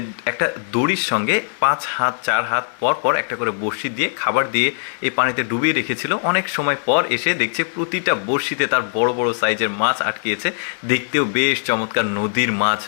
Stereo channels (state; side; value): silent; right; digital silence